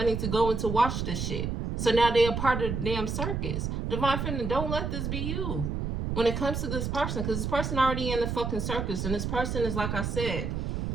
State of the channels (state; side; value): noise; right; rumble, 2 dB below the sound